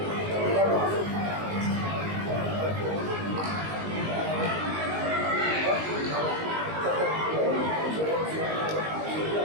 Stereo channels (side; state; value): left; late; 19 ms